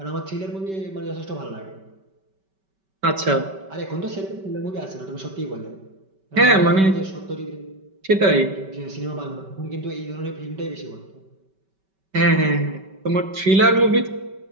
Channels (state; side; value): late; left; 5.2 ms